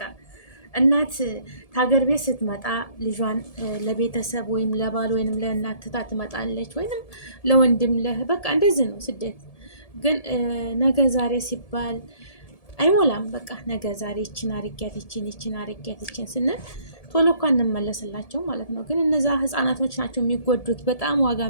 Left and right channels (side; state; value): right; late; 1.7 ms